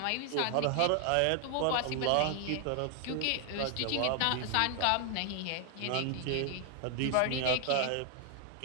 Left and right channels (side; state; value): both; different; correlation 0.00